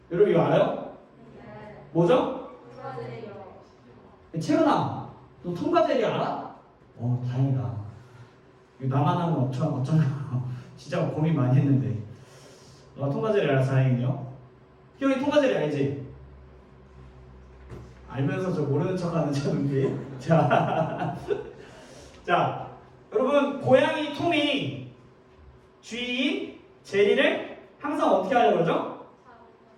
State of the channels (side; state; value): both; identical; correlation 1.00